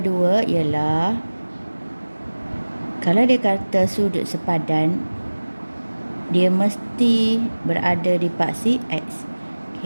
ialah kalau dia kata sudut sepadan, dia mesti berada di paksi X.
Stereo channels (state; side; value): inverted; both; correlation -1.00